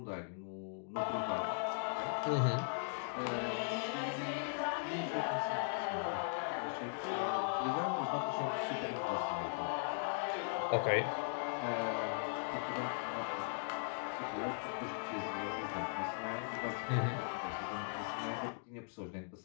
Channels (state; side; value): silent; right; digital silence